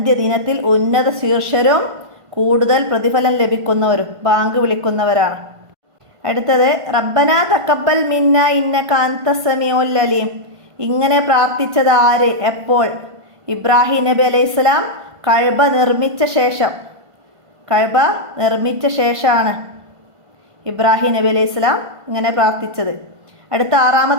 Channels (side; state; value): left; late; 1.5 ms